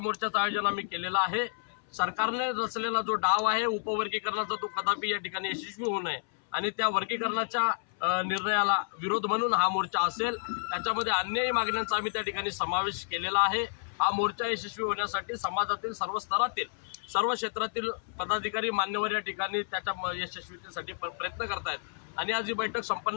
आयोजन आम्ही केलेलं आहे। सरकारने रचलेला जो डाव आहे उपवर्गीकरणाचा तो कदापि या ठिकाणी यशस्वी होऊ नये आणि त्या वर्गीकरणाच्या निर्णयाला विरोध म्हणून हा मोर्चा असेल। त्याच्यामध्ये अन्यही मागण्यांचा आम्ही त्या ठिकाणी समावेश केलेला आहे। हा मोर्चा यशस्वी होण्यासाठी समाजातील सर्व स्तरातील सर्व क्षेत्रातील पदाधिकारी मान्यवर या ठिकाणी त्याच्या यशस्वीतेसाठी प्रयत्न करतायत आणि आज ही बैठक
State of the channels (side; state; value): right; silent; 58 dB below the other